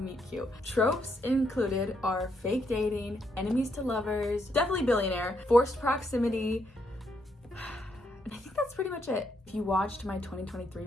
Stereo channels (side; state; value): both; normal; correlation 0.76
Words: Cute. Tropes included are fake dating, enemies to lovers, definitely billionaire, forced proximity, and I think that's pretty much it. If you watched my 2023